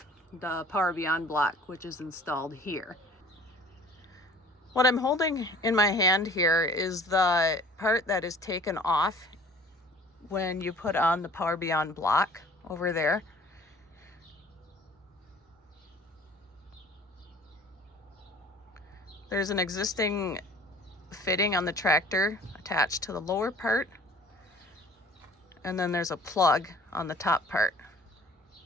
the Power Beyond block, which is installed here. What I'm holding in my hand here is the part that is taken off when you put on the Power Beyond block over there. There's an existing fitting on the tractor attached to the lower part, and then there's a plug on the top part.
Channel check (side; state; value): both; normal; correlation 0.50